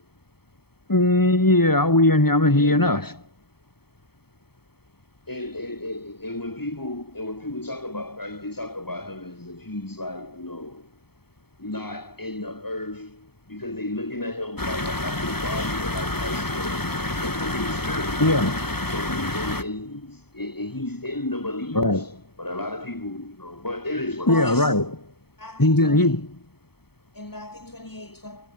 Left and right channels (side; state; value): right; late; 0.96 ms